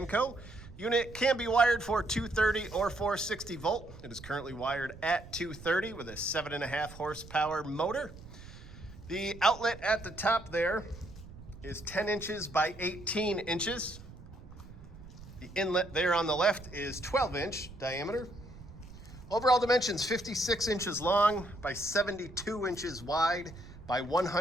Unit can be wired for 230 or 460 volt. It is currently wired at 230 with a 7.5 horsepower motor. The outlet at the top there is 10 inches by 18 inches. The inlet there on the left is 12-inch diameter. Overall dimensions 56 inches long by 72 inches wide by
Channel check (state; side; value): noise; right; rumble, 16 dB below the sound